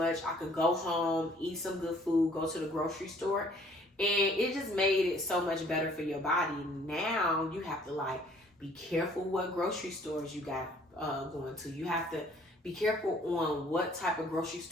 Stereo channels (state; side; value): normal; both; correlation 0.58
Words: I could go home, eat some good food, go to the grocery store. And it just made it so much better for your body. Now you have to like be careful what grocery stores you got going to. You have to be careful on what type of grocery